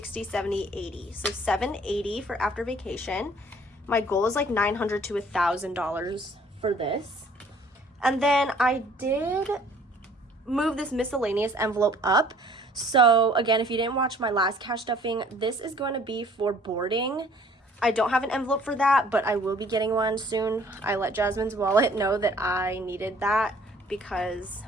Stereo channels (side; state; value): both; normal; correlation 0.56